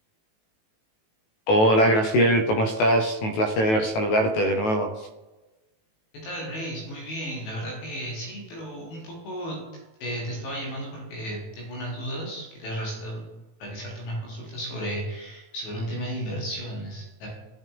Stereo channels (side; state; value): right; late; 18 ms